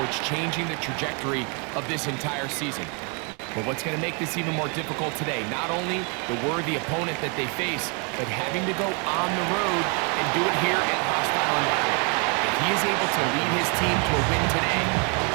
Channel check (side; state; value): left; quieter; 35.9 dB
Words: changing the trajectory of this entire season. But what's going to make this even more difficult today, not only the worthy opponent that they face, but having to go on the road and do it here in a hostile environment. If he is able to lead his team to a win today,